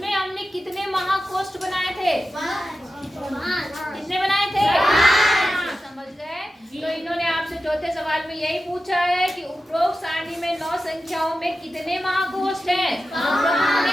हमने कितने महाकोष्ठ बनाए थे? कितने बनाए थे? समझ गए। तो इन्होंने आपसे चौथे सवाल में यही पूछा है कि उपरोक्त सारणी में 9 संख्याओं में कितने महाकोष्ठ हैं? 5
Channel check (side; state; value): both; normal; correlation 0.93